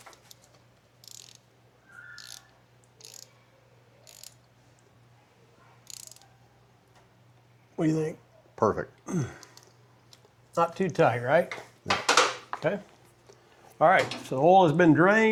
What do you think? Perfect. Not too tight, right? Okay. All right, so the oil has been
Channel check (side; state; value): both; identical; correlation 1.00